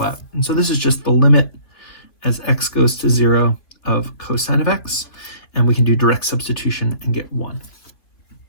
out. And so this is just the limit as x goes to 0 of cosine of x, and we can do direct substitution and get 1.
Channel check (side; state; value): right; late; 2.8 ms